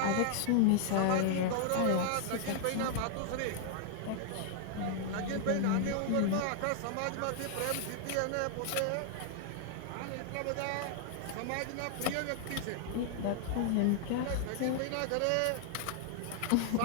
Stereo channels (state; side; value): different; both; correlation 0.00